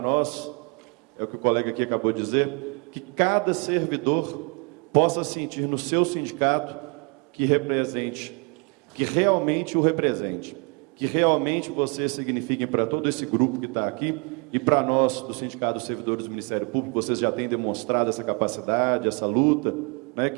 nós, é o que o colega aqui acabou de dizer, que cada servidor possa sentir no seu sindicato que represente, que realmente o represente, que realmente vocês signifiquem para todo esse grupo que está aqui e para nós, do Sindicato dos Servidores do Ministério Público, vocês já têm demonstrado essa capacidade, essa luta, né,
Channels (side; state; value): left; quieter; 33.7 dB